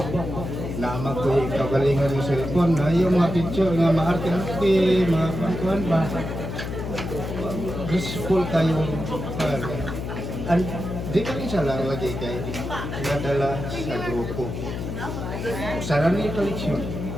na ko kagalingan ng cellphone na yung mga picture nga maarte-arte, mga pangkuhan ba. Useful kayo and di ka rin siya lang lagi kay nadala sa grupo. Sana na yung koleksyon.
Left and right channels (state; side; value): noise; left; hum, 5 dB below the sound